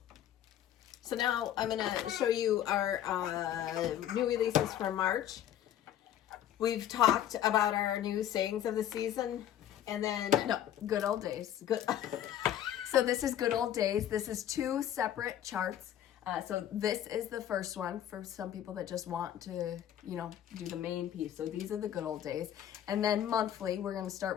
So now I'm going to show you our new releases for March. We've talked about our new Sayings of the Season. And then... No, Good Old Days. Good. So this is Good Old Days. This is 2 separate charts. So this is the first one for some people that just want to, do the main piece. So these are the good old days. And then monthly, we're going to start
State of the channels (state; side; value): quieter; right; 11.0 dB